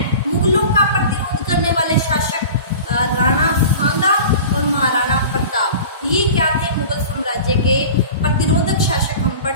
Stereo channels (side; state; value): both; inverted; correlation -0.38